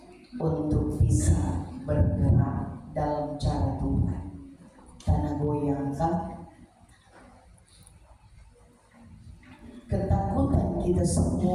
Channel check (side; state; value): both; identical; correlation 1.00